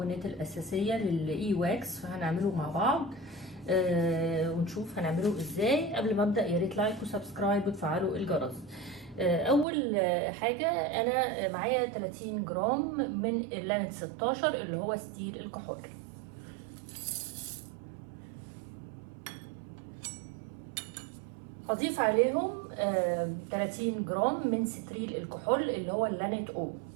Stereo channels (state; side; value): drops out; left; at 9.7 s